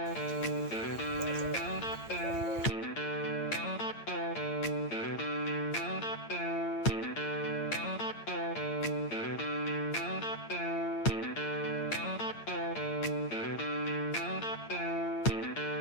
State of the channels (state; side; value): late; right; 8.7 ms